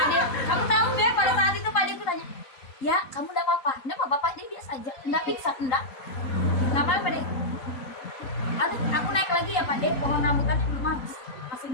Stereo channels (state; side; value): late; right; 3.9 ms